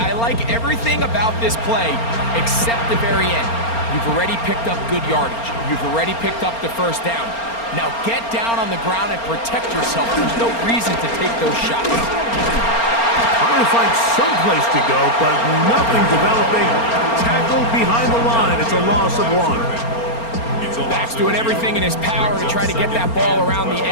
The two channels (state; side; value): late; right; 4.3 ms